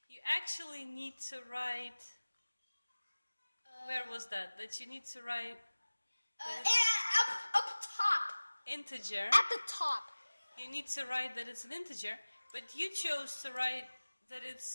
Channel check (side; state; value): both; inverted; correlation -1.00